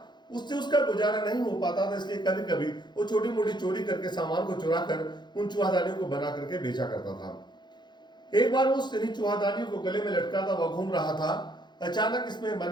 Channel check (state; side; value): late; right; 0.21 ms